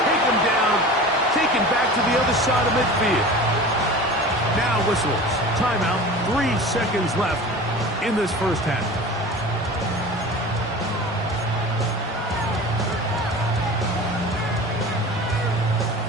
take him down, taken back to the other side of midfield. Now whistles. Timeout, 3 seconds left in this first half.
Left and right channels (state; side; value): normal; both; correlation 0.36